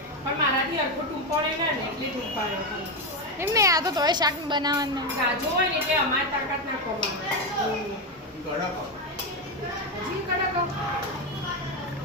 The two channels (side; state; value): both; normal; correlation 0.10